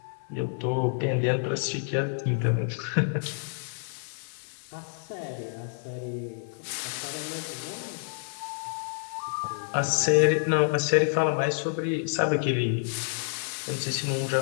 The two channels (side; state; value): right; silent; digital silence